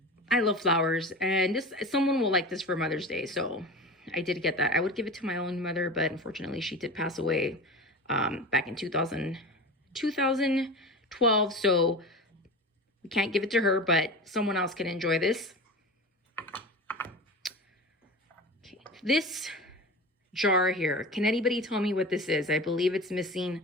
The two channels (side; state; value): both; normal; correlation 0.30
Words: I love flowers, and someone will like this for Mother's Day. So I did get that. I would give it to my own mother, but unfortunately she did pass away back in 2012. So we can't give it to her, but someone else can enjoy this. Okay, this jar here, can anybody tell me what this is? I believe it's